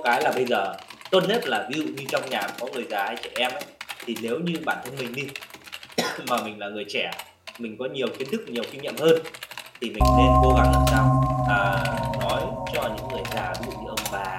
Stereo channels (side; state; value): both; identical; correlation 1.00